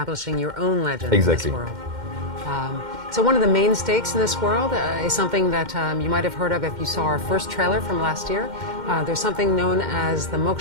your own legend Exactly. in this world. So one of the main stakes in this world is something that you might have heard of if you saw our first trailer from last year. There's something known as the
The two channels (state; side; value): late; left; 2.1 ms